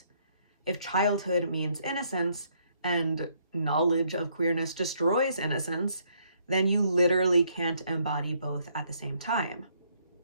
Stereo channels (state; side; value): inverted; both; correlation -0.70